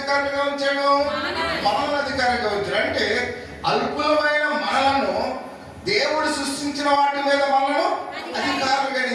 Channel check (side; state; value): both; identical; correlation 1.00